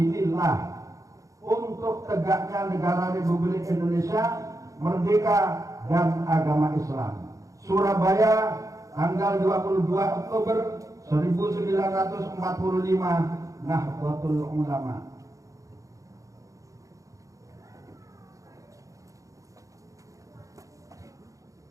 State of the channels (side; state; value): left; late; 0.16 ms